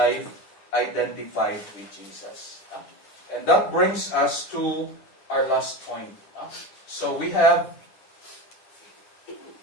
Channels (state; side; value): late; right; 10 ms